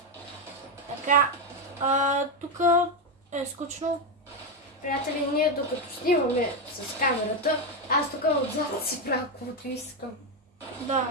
Така, тук е скучно. Приятели, ние докато снимаме с камерата, аз тук отзад си правя каквото искам. Да,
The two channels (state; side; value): normal; both; correlation 0.08